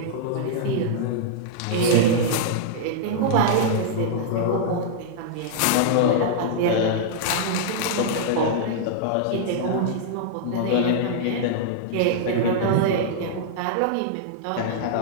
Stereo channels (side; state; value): both; different; correlation -0.01